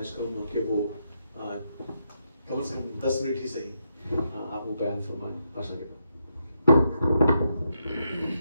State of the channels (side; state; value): both; inverted; correlation -0.81